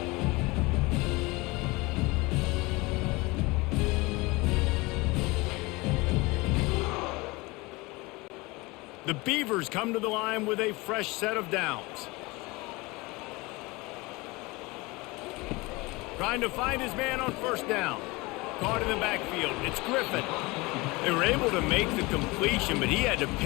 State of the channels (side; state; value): right; quieter; 23.7 dB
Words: The Beavers come to the line with a fresh set of downs. Trying to find his man on first down. Caught in the backfield. It's Griffin. They were able to make the completion, but he had to